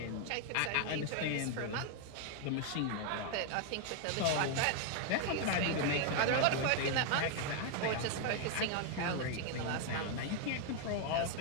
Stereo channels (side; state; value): both; different; correlation 0.00